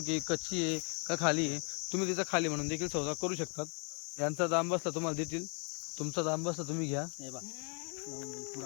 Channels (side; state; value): right; quieter; 36.6 dB